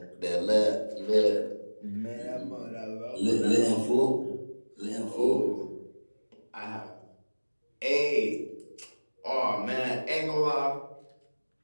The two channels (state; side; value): inverted; both; correlation -1.00